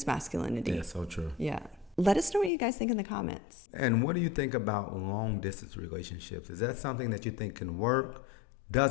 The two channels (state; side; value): drops out; right; at 2.5 s